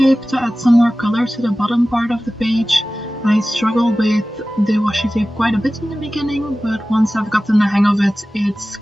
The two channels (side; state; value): both; normal; correlation 0.96